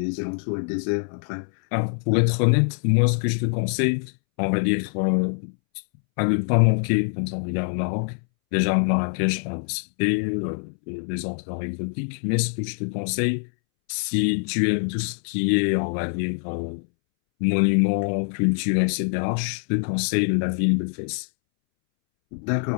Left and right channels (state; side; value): silent; right; 63 dB below the other